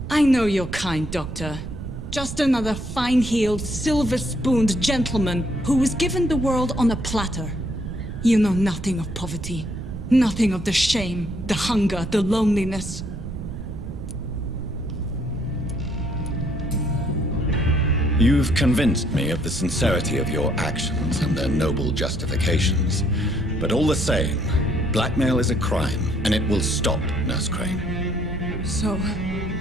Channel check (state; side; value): noise; right; rumble, 8 dB below the sound